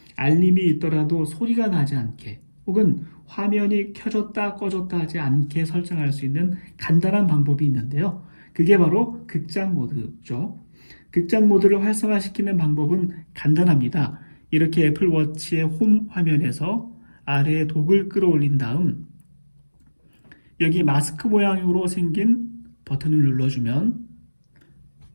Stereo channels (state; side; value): inverted; both; correlation -1.00